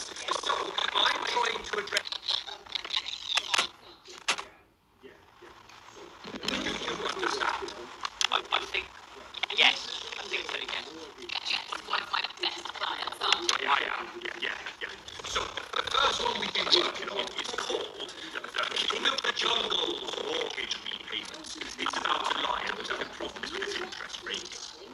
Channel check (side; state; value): both; identical; correlation 1.00